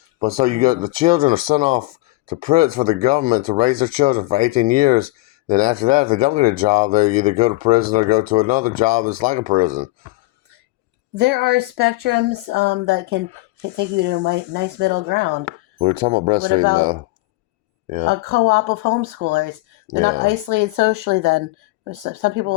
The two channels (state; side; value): quieter; right; 20.5 dB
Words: But so you got the children are sent off to prison for the government to raise their children for 18 years. Then after that, if they don't get a job, they either go to prison or go to another job that's like a prison. There are spectrums that can take you to a nice middle ground. We were talking about What breastfeeding, about though. Yeah, a co-op of homeschoolers? They're not yeah. isolated socially then. Some people